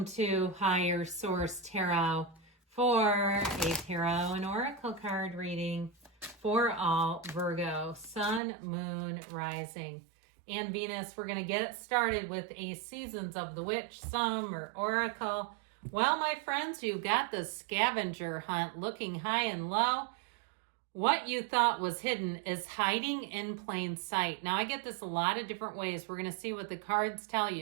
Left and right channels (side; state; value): left; drops out; at 8.4 s